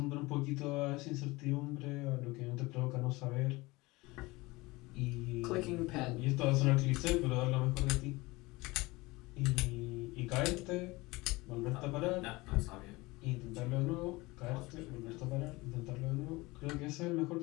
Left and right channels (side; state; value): right; quieter; 22.2 dB